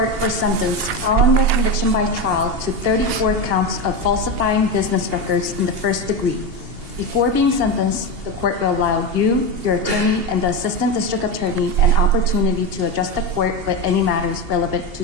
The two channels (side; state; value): left; late; 2.8 ms